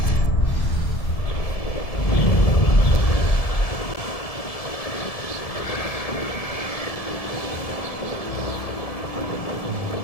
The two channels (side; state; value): right; late; 1.7 ms